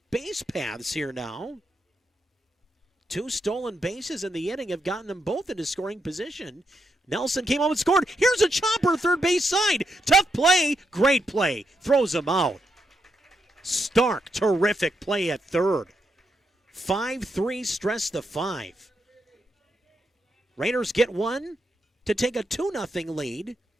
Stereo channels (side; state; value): both; normal; correlation 0.82